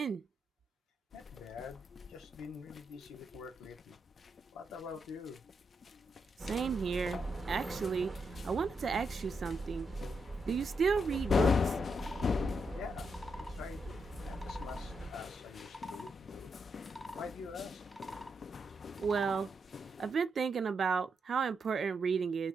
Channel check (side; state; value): both; normal; correlation 0.82